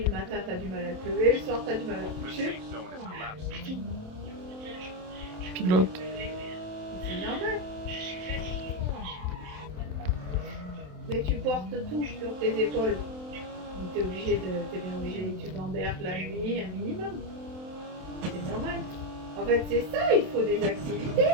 le matin, t'as du mal à te lever, le soir, t'as du mal à te The coucher. safe zone is collapsing. Pilote. C'est normal. Mais tu portes tout sur tes épaules. Donc t'es bien obligé, tu gamberges la nuit un minimum. C'est normal. En fait, c'est ça, il faut des activités.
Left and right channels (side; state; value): left; late; 27 ms